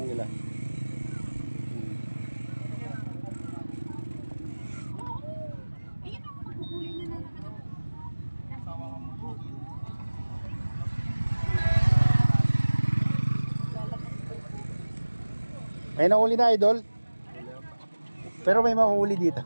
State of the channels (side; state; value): both; inverted; correlation -1.00